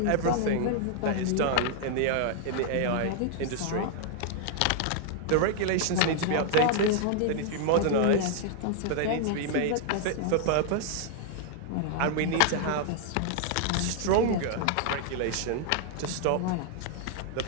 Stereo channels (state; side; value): different; both; correlation 0.00